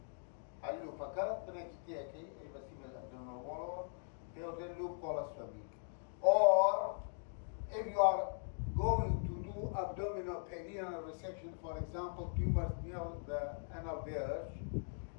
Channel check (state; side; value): silent; right; digital silence